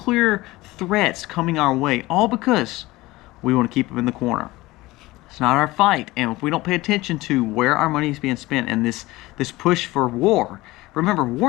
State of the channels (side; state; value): right; quieter; 19.5 dB